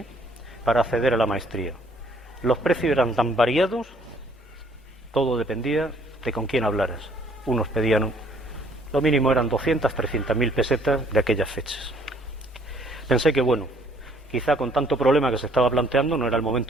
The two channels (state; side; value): normal; both; correlation 0.61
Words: para acceder a la maestría. Los precios eran tan variados, todo dependía de con quién hablaras. Unos pedían, lo mínimo eran 200, 300.000 pesetas de aquellas fechas. Pensé que bueno, quizá con tanto problema que se estaba planteando no era el